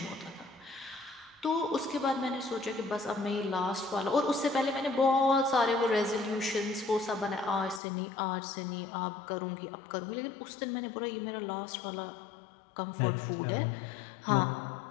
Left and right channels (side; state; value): right; drops out; at 7.8 s